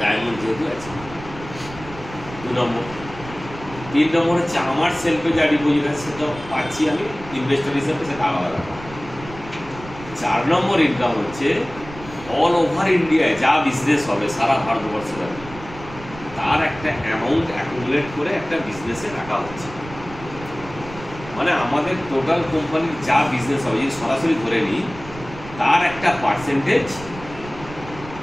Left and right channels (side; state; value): right; noise; rumble, 15 dB below the sound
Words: যেহেতু আছে। 2 নম্বর। 3 নম্বর হচ্ছে আমার সেলফে যা ডিপোজিট আছে সেটা পাচ্ছি আমি ইনভেস্টর হিসেবে, সেটা আলাদা ব্যাপার। 4 নম্বর ইনকাম হচ্ছে অল ওভার ইন্ডিয়ায় যা বিজনেস হবে সারা ভারতবর্ষে, তার একটা অ্যামাউন্ট অ্যাকুমুলেট করে একটা বিজনেসে রাখা হচ্ছে। মানে আমাদের টোটাল কোম্পানির যা বিজনেস হবে, যদি সরাসরি ধরে নিই, তার একটা পার্সেন্টেজ